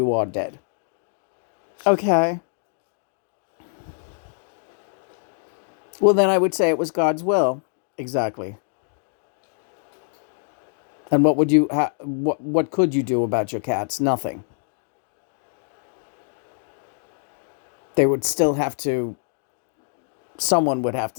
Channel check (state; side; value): silent; right; digital silence